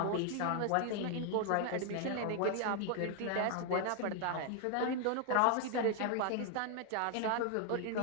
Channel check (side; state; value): both; different; correlation 0.00